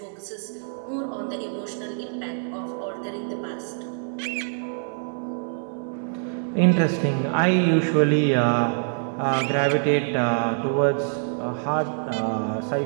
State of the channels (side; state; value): left; silent; digital silence